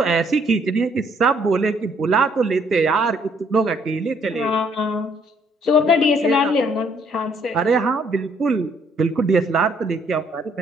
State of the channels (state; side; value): normal; both; correlation 0.66